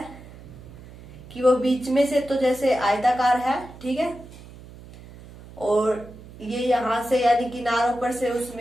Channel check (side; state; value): right; noise; hum, 18 dB below the sound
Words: कि वो बीच में से तो जैसे आयताकार है, ठीक है, और ये यहाँ से यानी किनारों पर से